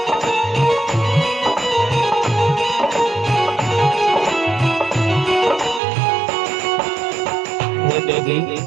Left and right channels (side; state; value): left; drops out; at 5.8 s